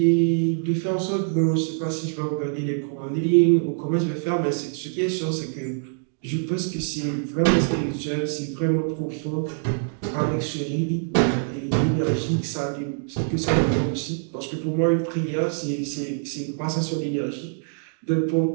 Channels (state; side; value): silent; left; digital silence